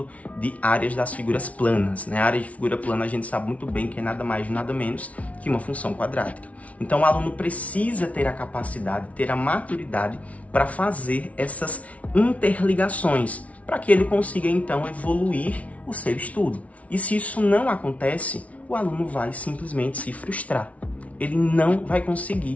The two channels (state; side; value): late; right; 0.066 ms